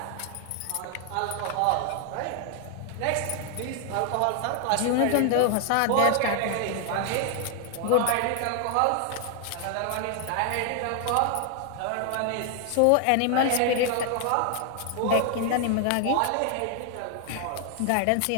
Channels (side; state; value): both; different; correlation 0.00